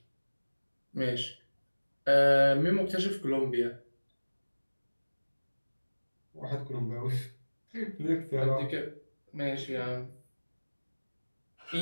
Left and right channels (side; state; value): both; inverted; correlation -1.00